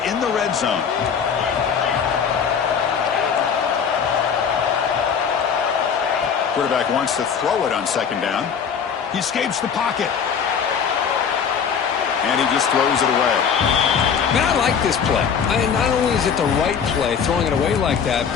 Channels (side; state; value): right; quieter; 7.0 dB